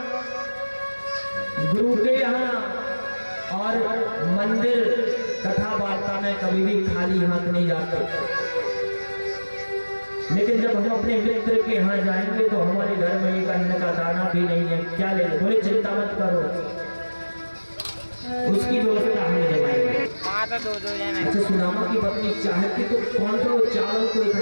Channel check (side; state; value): both; inverted; correlation -1.00